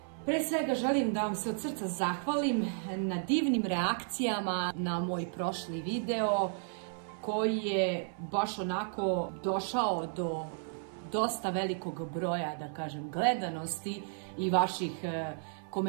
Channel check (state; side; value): silent; left; 56 dB below the other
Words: Pre svega želim da vam se od srca zahvalim na divnim reakcijama na moj prošli video koji je baš onako došao do dosta velikog broja, da kažem, gledanosti i vaših